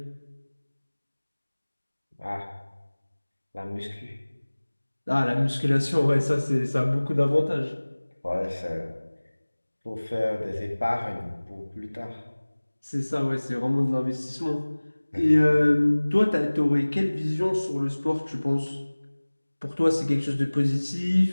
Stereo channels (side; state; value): both; inverted; correlation -1.00